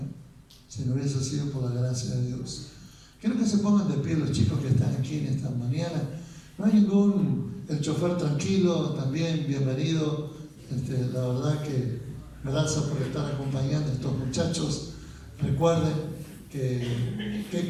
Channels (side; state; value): both; identical; correlation 1.00